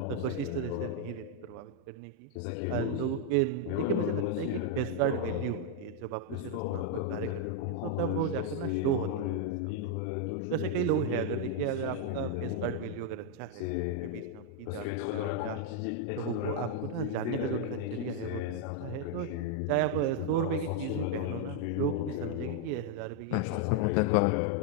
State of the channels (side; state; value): both; different; correlation 0.00